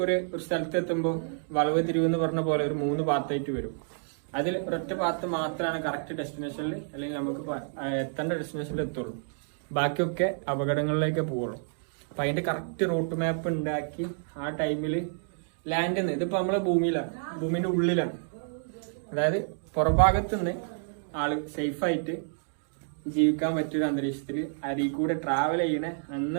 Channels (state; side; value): silent; left; digital silence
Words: ഒരു സ്ഥലത്ത് എത്തുമ്പോൾ വളവ് തിരിവെന്ന് പറഞ്ഞ പോലെ ഒരു 3 പാത്തായിട്ട് വരും. അതിൽ ഒരൊറ്റ പാത്ത് മാത്രമാണ് കറക്റ്റ് ഡെസ്റ്റിനേഷനിൽ അല്ലെങ്കിൽ നമുക്ക് എത്തേണ്ട ഡെസ്റ്റിനേഷനിൽ എത്തുള്ളൂ. ബാക്കിയൊക്കെ അപകടങ്ങളിലേക്ക് പോവുള്ളൂ. അപ്പൊ അതിന്റെ കറക്റ്റ് റൂട്ട് മാപ്പ് ഉണ്ടാക്കി ആ ടൈമിൽ ലാൻഡിൽ നിന്ന് ഇതിപ്പോ നമ്മളെ ഭൂമിയിലാണ്, ഭൂമിന്റെ ഉള്ളിലാണ്. അതായത് പുറഭാഗത്ത് നിന്ന് ആള് സേഫായിട്ട് ജീവിക്കാൻ പറ്റിയൊരു അന്തരീക്ഷത്തിൽ അരിയിൽ കൂടെ ട്രാവൽ ചെയ്യണ